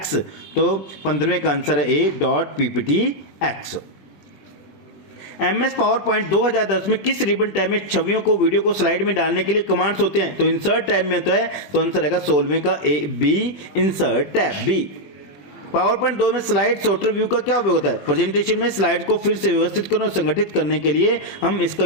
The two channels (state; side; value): late; right; 21 ms